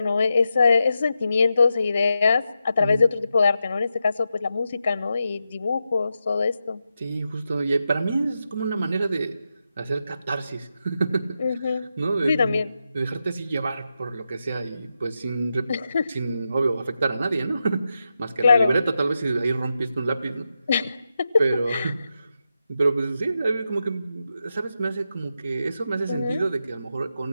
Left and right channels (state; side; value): inverted; both; correlation -0.88